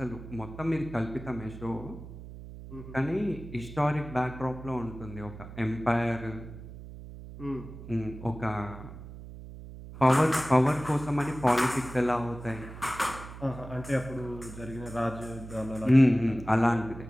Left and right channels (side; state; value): right; noise; hum, 13 dB below the sound